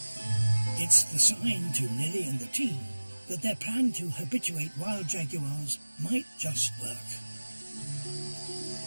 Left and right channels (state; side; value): inverted; both; correlation -1.00